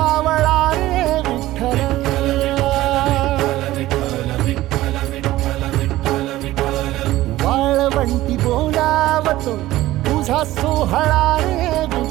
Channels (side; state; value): left; quieter; 16.1 dB